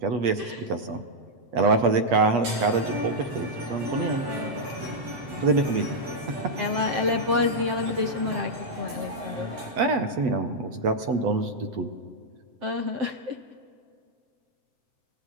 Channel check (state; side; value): late; left; 8.3 ms